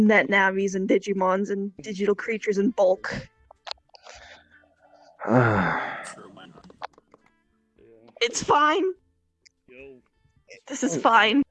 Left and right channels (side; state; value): both; identical; correlation 1.00